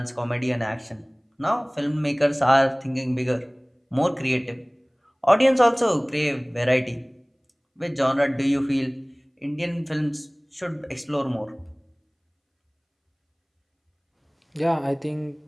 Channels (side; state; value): both; identical; correlation 1.00